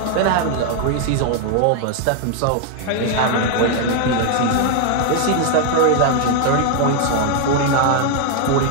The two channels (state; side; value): different; both; correlation 0.00